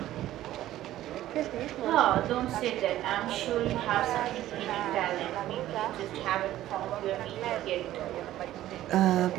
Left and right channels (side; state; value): left; quieter; 13.9 dB